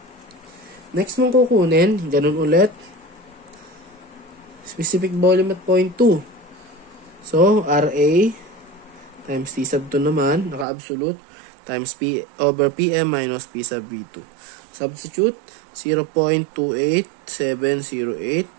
Next mong kukunin, ganun ulit. Specific volume at 0.2. So, RA times T sub 2 naman, naka-absolute, times P over PM minus P sub V2. Substitute,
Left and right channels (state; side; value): drops out; left; at 10.7 s